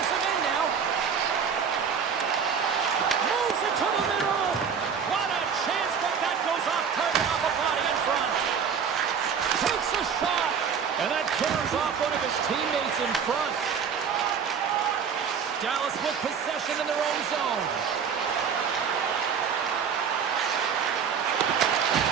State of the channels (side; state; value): left; quieter; 6.8 dB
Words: end now. Moves it to the middle. What a chance, but that goes off target off a body in front. Takes a shot, and that tears off one of his teammates in front. Dallas with possession in their own zone.